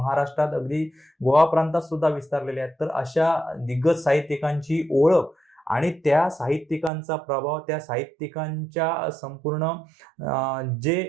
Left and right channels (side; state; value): left; drops out; at 6.9 s